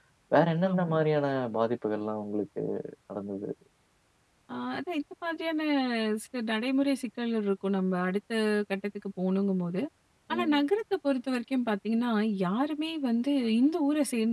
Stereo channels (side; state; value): both; identical; correlation 1.00